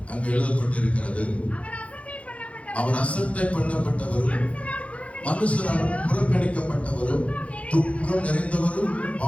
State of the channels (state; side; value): late; right; 0.063 ms